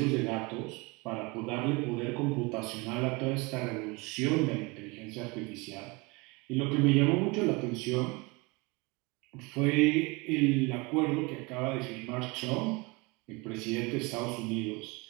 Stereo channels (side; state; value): left; quieter; 26.6 dB